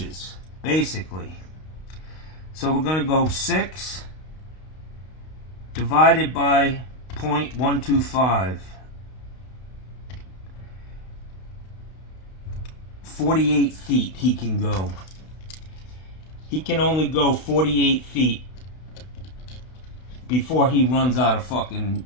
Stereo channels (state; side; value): late; right; 32 ms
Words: basically. So we're going to go 6 divided by 0.125. 48 feet he can go. He can only go 48 feet before he runs out of